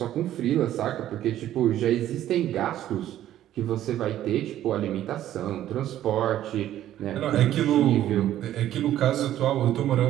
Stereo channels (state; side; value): quieter; left; 12.4 dB